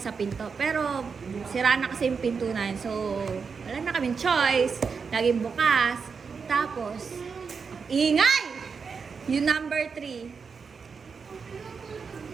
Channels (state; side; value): quieter; left; 5.5 dB